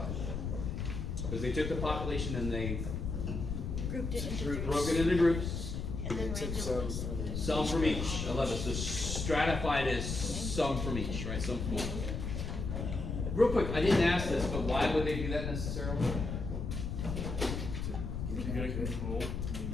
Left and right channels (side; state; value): left; noise; rumble, 3 dB below the sound